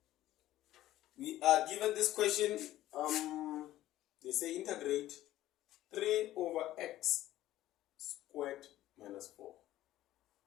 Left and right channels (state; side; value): quieter; right; 14.5 dB